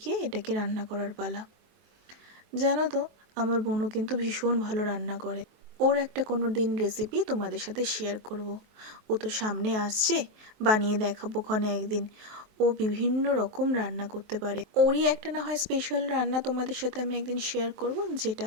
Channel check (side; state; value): left; late; 23 ms